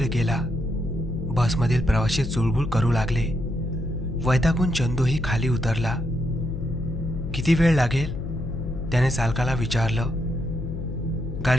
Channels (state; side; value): noise; left; hum, 6 dB below the sound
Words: गेला. बसमधील प्रवासी चुळबुळ करू लागले. वैतागून चंदूही खाली उतरला. किती वेळ लागेल त्याने चालकाला विचारलं.